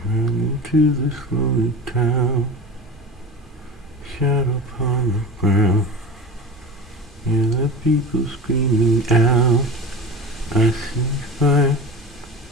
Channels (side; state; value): both; normal; correlation 0.31